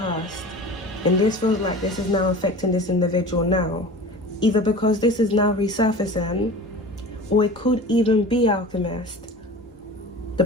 and this feels like this is now affecting this individual now, either because this is now resurfacing, or it could even be, Alchemist, the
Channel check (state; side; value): normal; both; correlation 0.37